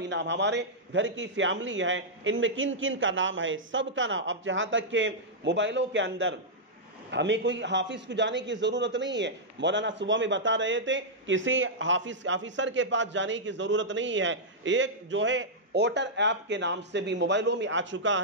نام، ہمارے گھر کی فیملی ہے، ان میں کن کن کا نام ہے، سب کا نام، اب جہاں تک کہ موبائلوں کے اندر ہمیں کوئی حافظ کو جانے کی ضرورت نہیں ہے، مولانا صبح میں بتا رہے تھے، کسی آفیسر کے پاس جانے کی ضرورت نہیں ہے، ایک جو ہے ووٹر ایپ کے نام سے بھی موبائلوں میں آ چکا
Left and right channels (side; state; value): both; normal; correlation -0.09